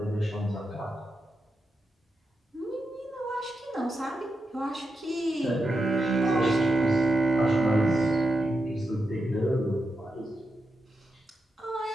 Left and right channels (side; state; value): both; normal; correlation 0.87